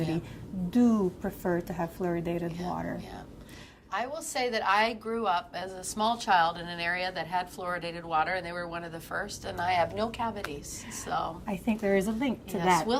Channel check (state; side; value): identical; both; correlation 1.00